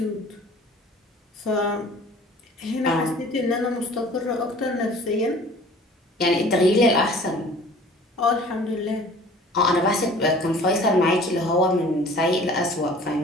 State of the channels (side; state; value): both; normal; correlation 0.48